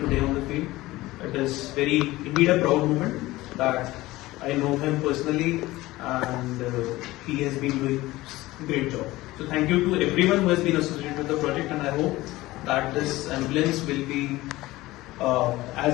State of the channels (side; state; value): right; quieter; 18.4 dB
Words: on the field, it is very indeed a proud moment that I know him personally, and he has been doing a great job. So thank you to everyone who has been associated with the project, and I hope that this ambulance will be